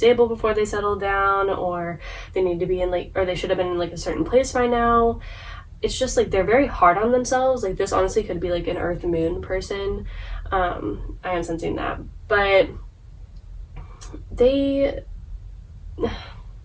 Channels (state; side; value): identical; both; correlation 1.00